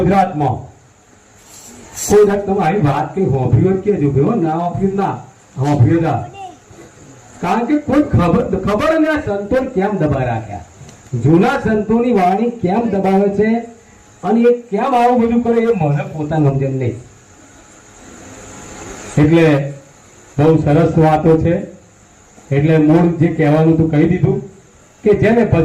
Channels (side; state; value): both; identical; correlation 1.00